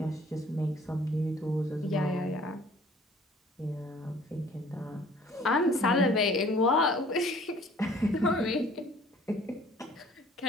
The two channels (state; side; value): normal; both; correlation 0.54